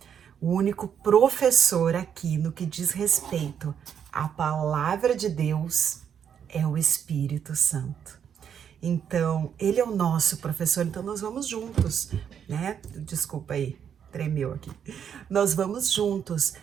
O único professor aqui no que diz respeito à palavra de Deus é o Espírito Santo. Então, ele é o nosso professor, então nós vamos juntos, né? Desculpa aí, tremeu aqui. Nós vamos juntos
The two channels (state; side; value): quieter; left; 8.2 dB